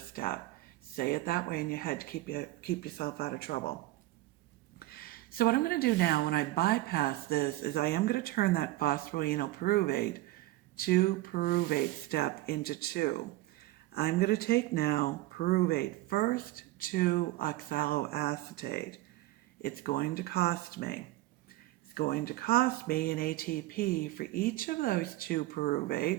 Say it that way in your head to keep yourself out of trouble. So what I'm going to do now when I bypass this is I am going to turn that phosphoenol pyruvate to pyruvate step into 2. I'm going to take now pyruvate first to oxaloacetate. It's going to cost me. It's going to cost me an ATP for each of those 2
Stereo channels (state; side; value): quieter; left; 17.1 dB